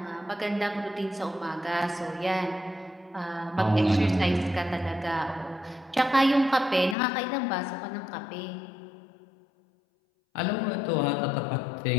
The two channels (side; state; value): right; drops out; at 7.0 s